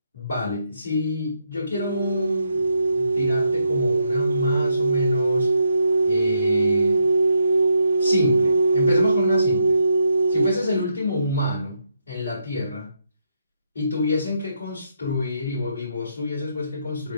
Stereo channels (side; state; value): both; inverted; correlation -0.79